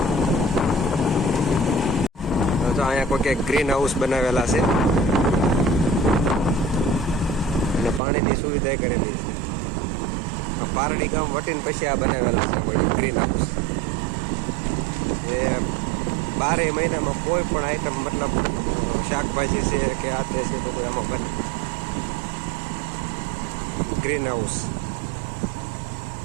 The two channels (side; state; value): left; drops out; at 8.0 s